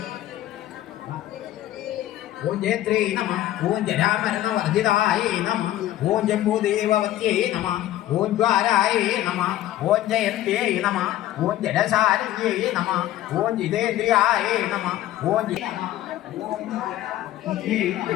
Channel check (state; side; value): quieter; right; 13.7 dB